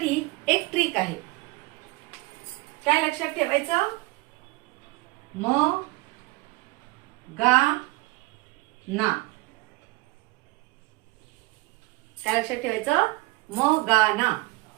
एक ट्रिक आहे. काय लक्षात ठेवायचं? म गा ना. काय लक्षात ठेवायचं? म गा ना.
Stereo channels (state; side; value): quieter; left; 22.8 dB